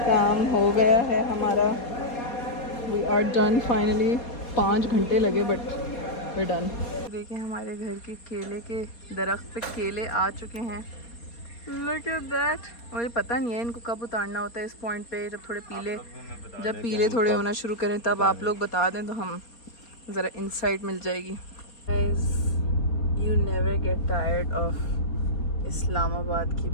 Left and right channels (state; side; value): late; right; 4.2 ms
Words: काम हो गया है हमारा। We are done finally. 5 घंटे लगे बट वी डन। देखिए हमारे घर के केले के दरख्त पे केले आ चुके हैं। Look at that. मुझे पता नहीं है इनको कब उतारना होता है इस पॉइंट पे, जब थोड़े पीले, जब पीले थोड़े होना शुरू करें तब आप लोग बता दें तो हम ज़रा इंसाइट मिल जाएगी। Guys, you never get tired of Islamabad की